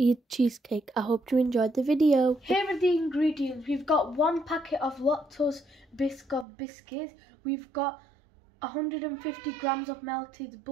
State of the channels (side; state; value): left; drops out; at 6.5 s